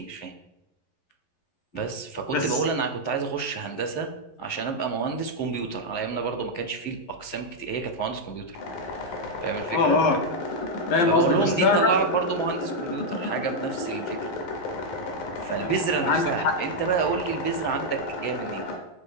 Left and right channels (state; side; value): late; right; 11 ms